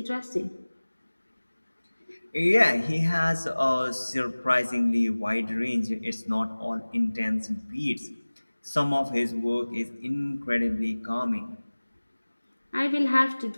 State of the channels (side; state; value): both; inverted; correlation -1.00